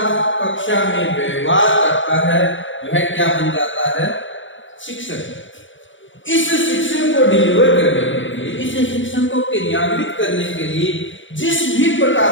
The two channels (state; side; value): late; right; 0.56 ms